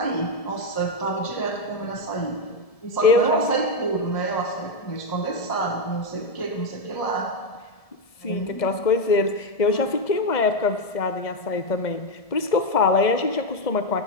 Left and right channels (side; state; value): right; late; 1.7 ms